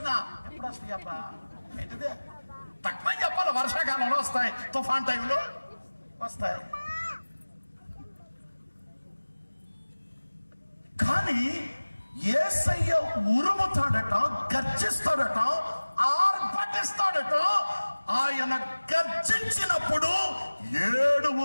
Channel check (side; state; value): both; inverted; correlation -1.00